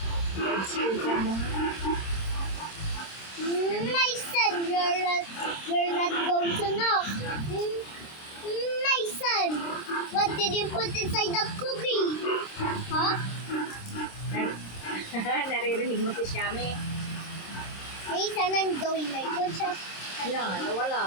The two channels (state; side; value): late; right; 26 ms